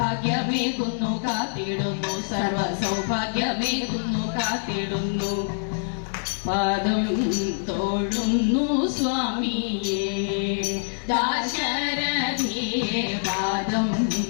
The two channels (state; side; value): silent; right; digital silence